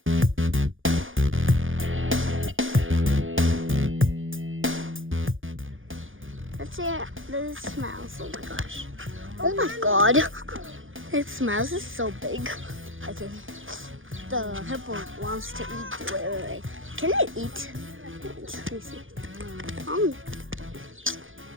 Let's see how this smells. Oh my gosh. Oh my god. It smells. It's so big. Okay. The hippo wants to eat. Wait. Can it eat? Let me see.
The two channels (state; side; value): late; left; 0.58 ms